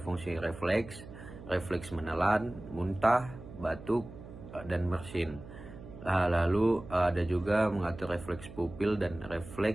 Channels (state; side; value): noise; right; hum, 15 dB below the sound